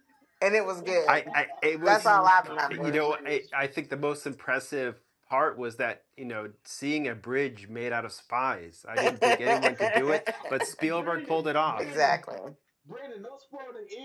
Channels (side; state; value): both; identical; correlation 1.00